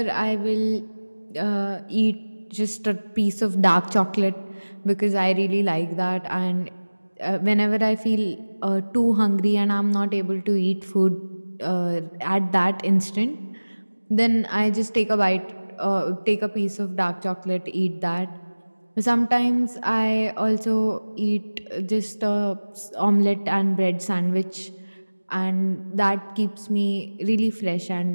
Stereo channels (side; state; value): both; inverted; correlation -1.00